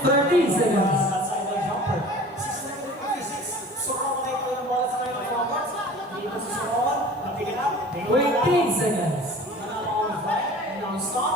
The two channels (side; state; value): both; normal; correlation 0.42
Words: 30 seconds. Outside the jumper. 6-56. Soro tayo yung bola sa kayo ng forward. Dito si Soro. Napigil up. 20 seconds.